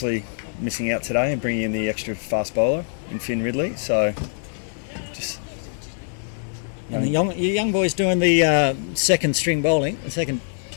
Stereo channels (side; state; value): right; silent; 63 dB below the other